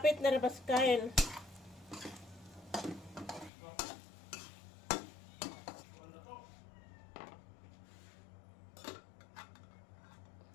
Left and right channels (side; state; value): right; drops out; at 3.5 s